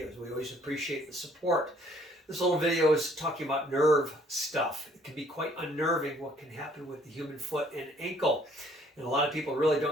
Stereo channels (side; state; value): both; normal; correlation 0.61